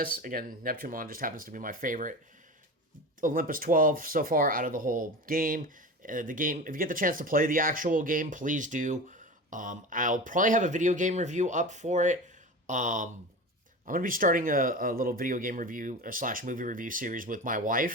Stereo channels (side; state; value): both; normal; correlation 0.30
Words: Again, Neptunemon just happens to be my favorite Olympus 12 so far out of the whole game. The game, if you get the chance to play the actual game, please do. I'll probably have a video game review up for it. I'm going to be starting a little video game review / movie review series with my